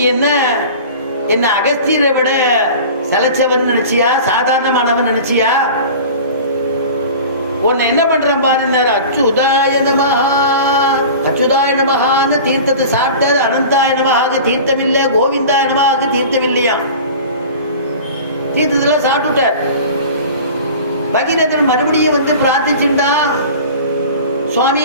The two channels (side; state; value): both; inverted; correlation -0.38